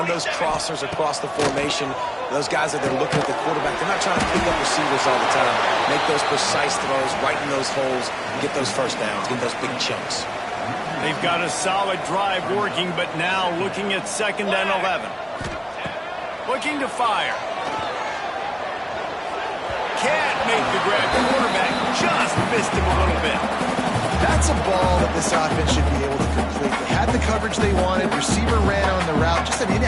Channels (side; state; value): both; identical; correlation 1.00